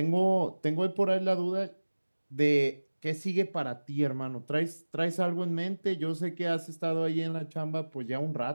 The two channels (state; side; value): inverted; both; correlation -1.00